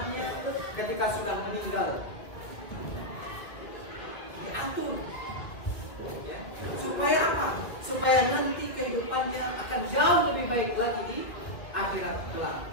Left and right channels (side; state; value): right; late; 1.9 ms